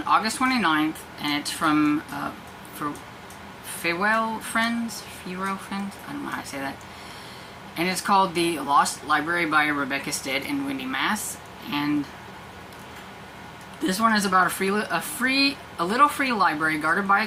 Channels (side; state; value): both; identical; correlation 1.00